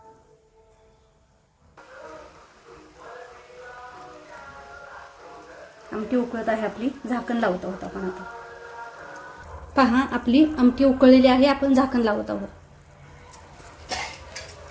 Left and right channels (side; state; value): both; identical; correlation 1.00